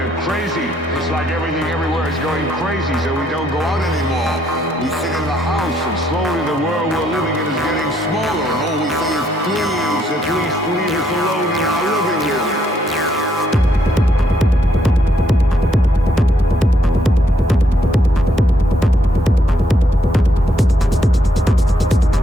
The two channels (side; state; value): both; normal; correlation 0.73